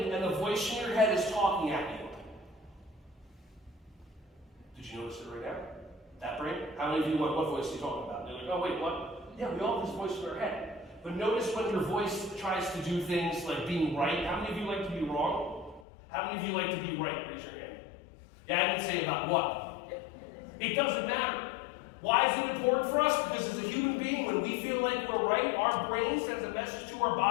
and the voice in your head is talking at you. Did you notice it right now? That brain? How many of you what voice are you talking about? They're like, oh wait, what? Yeah, we all have this voice in our head. But notice when your voice tries to do things like being right. How many of you like to be wrong? How many of you like to be right? Raise your hand. Yeah, I didn't say about what. It doesn't matter. Why is it important for us? Because as a human being, when we feel like we're right, our brain sends a message to our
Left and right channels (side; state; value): right; drops out; at 15.9 s